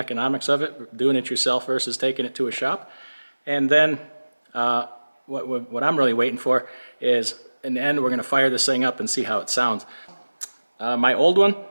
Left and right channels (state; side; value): inverted; both; correlation -1.00